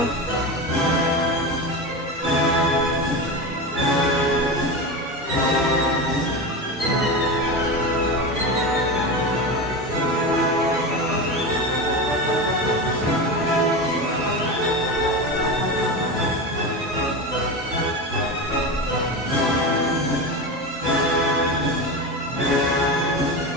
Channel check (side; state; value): both; normal; correlation 0.22